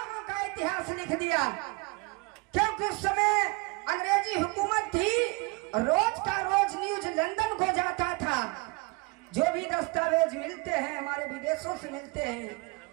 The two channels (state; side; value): quieter; left; 26.9 dB